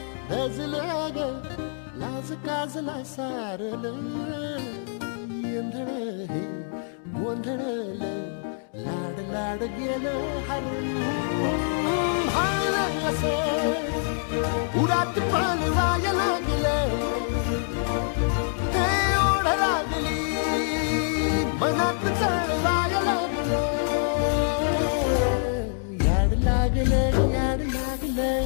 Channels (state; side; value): silent; right; digital silence